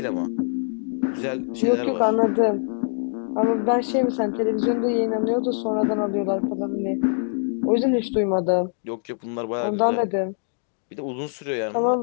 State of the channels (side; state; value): right; silent; digital silence